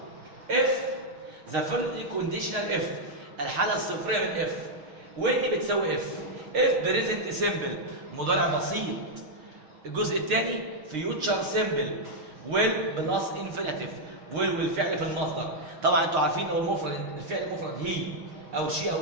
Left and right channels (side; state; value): left; late; 6.6 ms